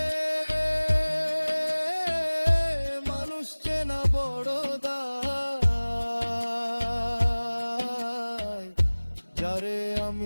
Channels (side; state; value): both; inverted; correlation -1.00